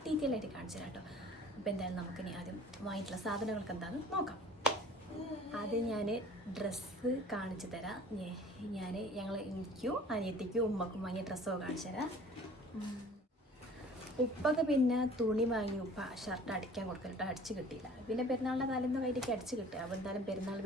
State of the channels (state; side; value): normal; both; correlation 0.48